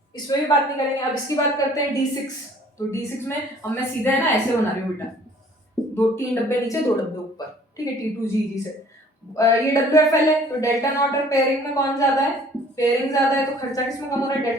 इसमें भी बात नहीं करेंगे। अब इसकी बात करते हैं D6। तो D6 में अब मैं सीधा है ना ऐसे बना रही हूँ बेटा, 3 डब्बे नीचे 2 डब्बे ऊपर, ठीक है। T2G से ये WFL है तो डेल्टा नॉट और पेयरिंग में कौन ज्यादा है? पेयरिंग ज्यादा है तो खर्चा किसमें कम हो रहा है?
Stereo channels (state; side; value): normal; both; correlation 0.54